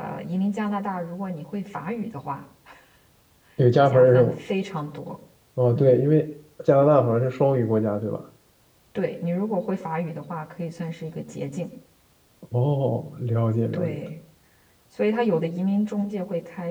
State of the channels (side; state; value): both; identical; correlation 1.00